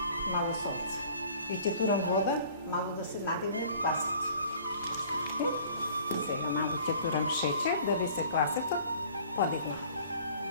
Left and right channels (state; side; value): inverted; both; correlation -0.51